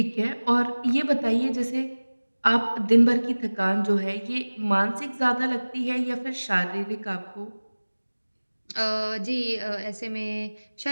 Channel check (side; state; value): both; inverted; correlation -1.00